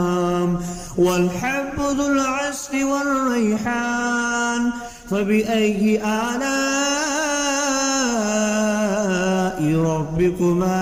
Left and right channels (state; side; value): identical; both; correlation 1.00